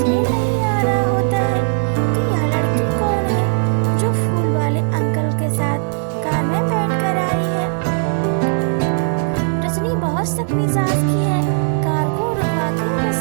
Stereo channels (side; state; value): left; silent; 67 dB below the other